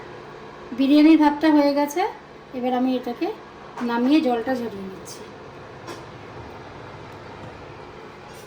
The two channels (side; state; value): both; identical; correlation 1.00